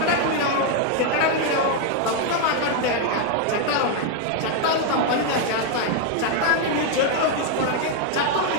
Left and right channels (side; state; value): both; different; correlation 0.01